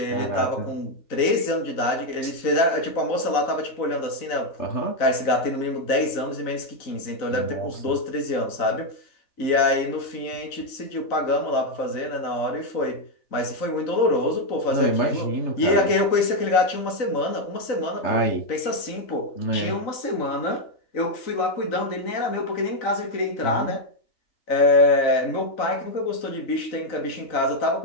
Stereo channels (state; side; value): late; right; 3.9 ms